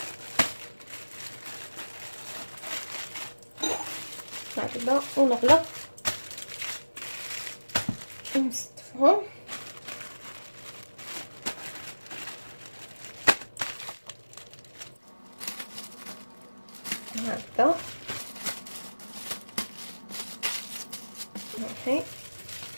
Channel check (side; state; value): both; inverted; correlation -1.00